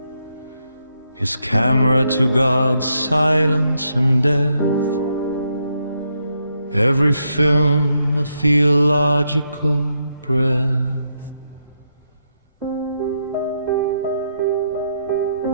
his camera to God's silence and death. Every film a theological breath.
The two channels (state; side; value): inverted; both; correlation -0.80